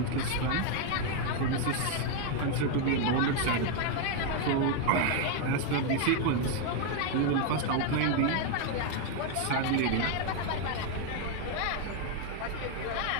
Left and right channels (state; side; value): different; both; correlation 0.01